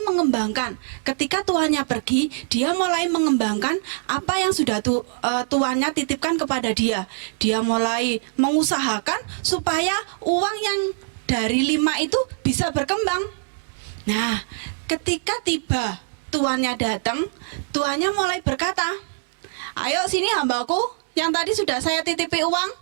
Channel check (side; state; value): left; silent; 63 dB below the other